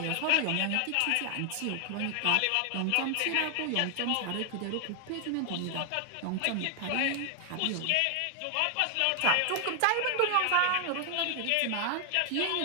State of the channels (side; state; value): both; different; correlation 0.00